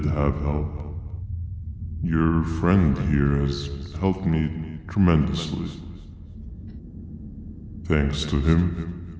have help. Your friend here has helped me tremendously. Thanks to him,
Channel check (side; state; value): both; identical; correlation 1.00